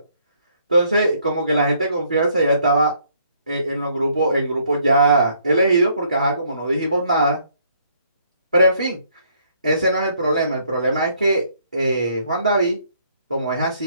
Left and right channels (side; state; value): both; inverted; correlation -0.66